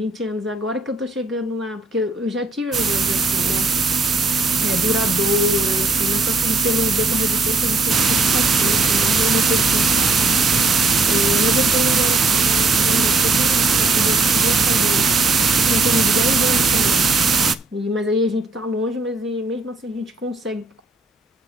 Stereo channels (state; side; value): quieter; left; 3.2 dB